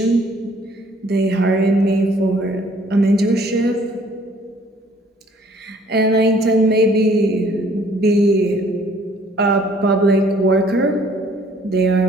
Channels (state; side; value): normal; both; correlation 0.58